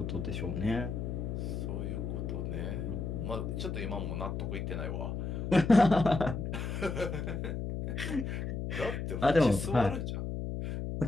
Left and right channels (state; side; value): noise; left; hum, 3 dB below the sound